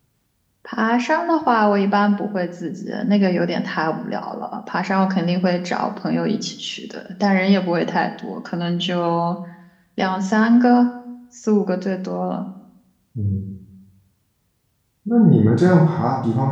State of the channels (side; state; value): both; identical; correlation 1.00